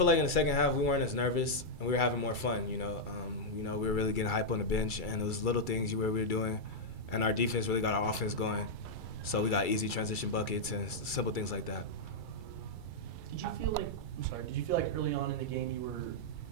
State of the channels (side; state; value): right; late; 2.3 ms